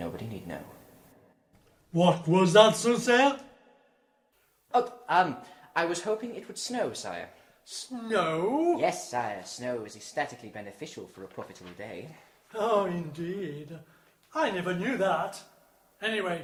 need know. What was that, Soothsayer? Oh, I was hoping it would snow, sire. Snow? Yes, sire, snow is ecstatically beneficial for a profitable day. Oh, indeed. I never knew that. Anyway,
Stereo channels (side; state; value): both; identical; correlation 1.00